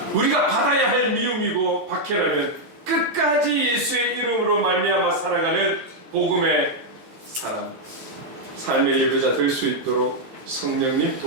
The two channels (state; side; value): late; left; 14 ms